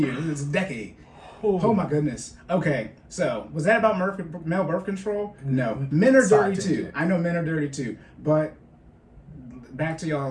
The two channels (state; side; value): identical; both; correlation 1.00